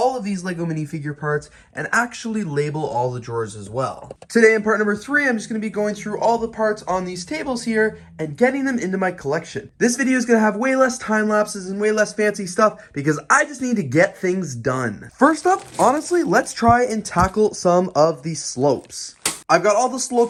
of these Lego minifigure parts and actually label all the drawers as well. Today in part number 3, I'm just going to be going through all the parts on these tables here and getting them into my collection. This video is going to have way less time lapses and way less fancy stuff because I just need to get things done. First up, honestly, let's try and tackle some of the slopes. I've got all the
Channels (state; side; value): identical; both; correlation 1.00